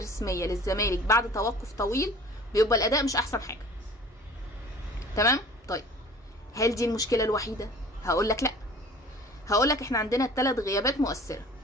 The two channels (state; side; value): normal; both; correlation 0.46